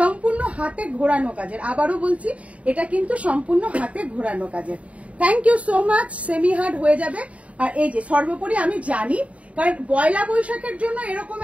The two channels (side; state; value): left; late; 0.065 ms